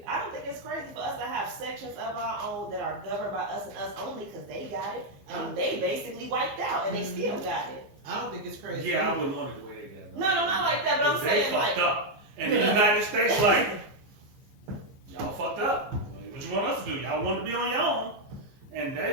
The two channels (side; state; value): left; late; 15 ms